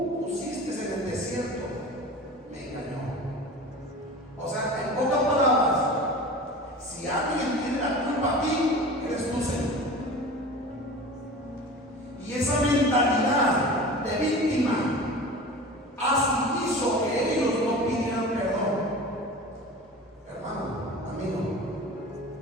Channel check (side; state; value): both; normal; correlation 0.35